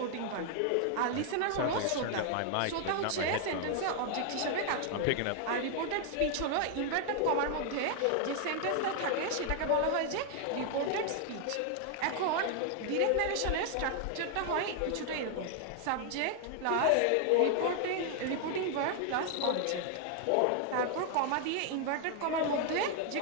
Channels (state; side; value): different; both; correlation 0.00